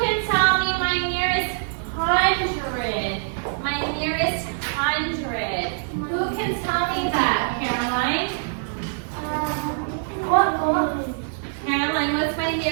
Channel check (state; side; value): silent; left; digital silence